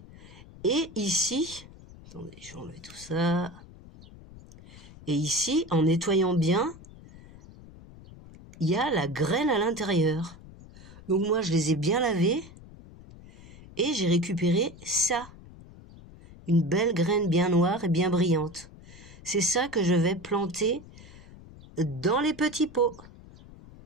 Et ici, attendez, je vais enlever tout ça, et ici, en nettoyant bien, il y a la graine à l'intérieur. Donc moi, je les ai bien lavées, et j'ai récupéré ça. Une belle graine bien noire et bien brillante. C'est ça que je vais planter dans les petits pots.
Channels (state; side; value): noise; left; rumble, 19 dB below the sound